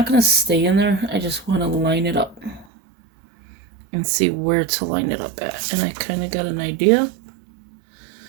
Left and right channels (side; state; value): left; drops out; at 2.7 s